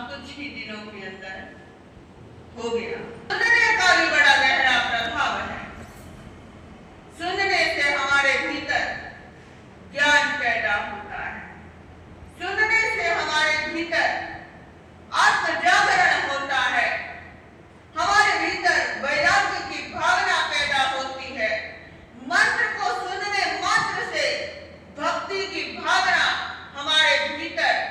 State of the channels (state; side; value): identical; both; correlation 1.00